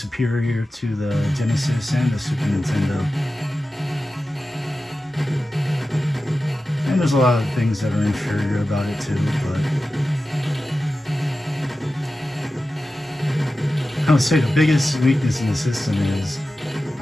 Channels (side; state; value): both; normal; correlation 0.93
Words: to the Genesis and the Super Nintendo. And there's a lot of things that are inferior about it too, but I would say the biggest weakness in the system is